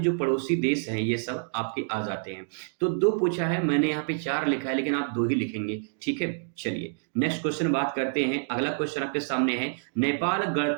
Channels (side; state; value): left; silent; digital silence